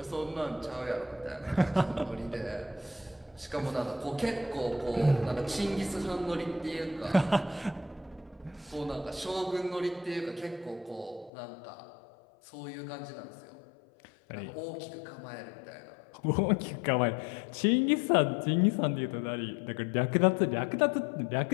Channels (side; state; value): right; drops out; at 11.3 s